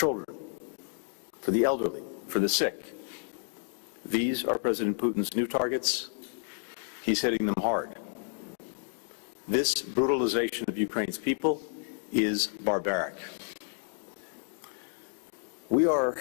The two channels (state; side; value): silent; right; 57 dB below the other